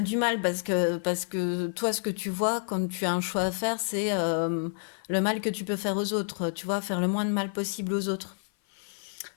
du mal parce que toi, ce que tu vois quand tu as un choix à faire, c'est le mal que tu peux faire aux autres. Tu vois, faire le moins de mal possible aux autres.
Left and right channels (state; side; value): silent; right; 55 dB below the other